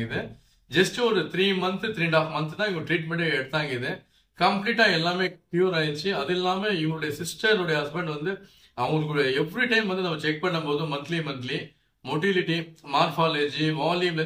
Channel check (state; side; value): identical; both; correlation 1.00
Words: ஜஸ்ட் ஒரு 3 மந்த் 3.5 மந்த் தான் இவங்க ட்ரீட்மெண்ட்டே எடுத்தாங்க. கம்ப்ளீட்டா எல்லாமே கியூர் ஆயிடுச்சு. அது இல்லாம இவங்களுடைய சிஸ்டருடைய ஹஸ்பண்ட் வந்து அவங்களுக்கு எவ்ரி டைம் வந்து நம்ம செக் பண்ணும்போது மந்த்லி மொட்டிலிட்டி, மார்பாலஜி, வால்யூம்ல